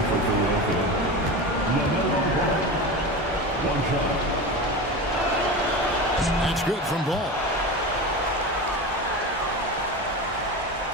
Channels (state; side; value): normal; both; correlation 0.26